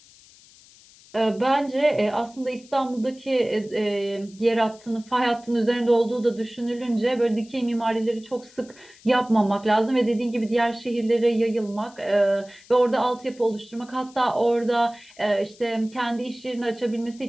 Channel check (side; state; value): left; noise; hiss, 25 dB below the sound